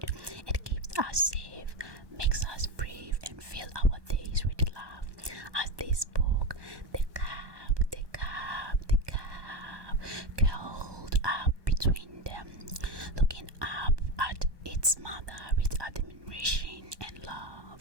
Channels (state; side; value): late; left; 1.2 ms